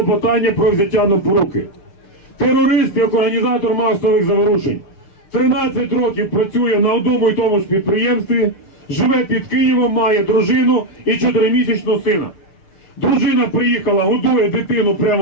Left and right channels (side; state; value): right; late; 6.7 ms